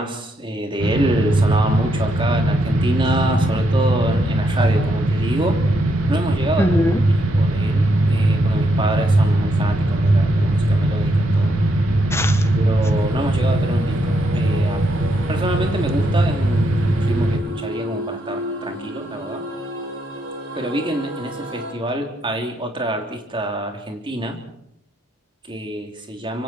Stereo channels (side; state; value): both; normal; correlation 0.78